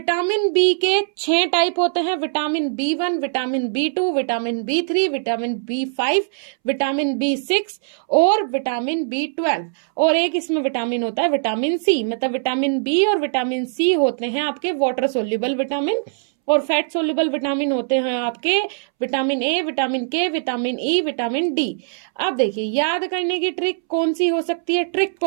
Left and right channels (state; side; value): silent; left; 65 dB below the other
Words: बी के 6 टाइप होते हैं। Vitamin B 1, vitamin B 2, vitamin B 3, vitamin B 5, vitamin B 6 और विटामिन बी 12। और एक इसमें विटामिन होता है विटामिन सी। मतलब विटामिन बी और विटामिन सी होते हैं आपके वाटर सोल्यूबल विटामिन और फैट सोल्यूबल विटामिन होते हैं आपके vitamin A, vitamin K, vitamin E, vitamin D. अब देखिए, याद करने की ट्रिक कौन सी हो सकती है। ट्रिक